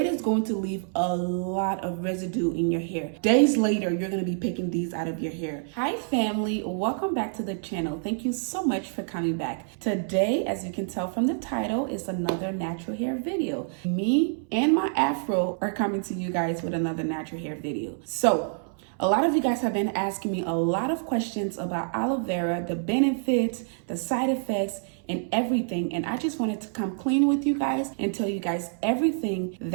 is going to leave a lot of residue in your hair. Days later, you're going to be picking these out of your hair. Hi family, welcome back to the channel. Thank you so much for coming back. Today, as you can tell from the title, is another natural hair video. Me and my afro are coming to you guys with another natural hair video. So, a lot of you guys have been asking me a lot of questions about aloe vera, the benefits, the side effects, and everything. And I just wanted to come clean with you guys and tell you guys everything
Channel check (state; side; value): silent; left; 59 dB below the other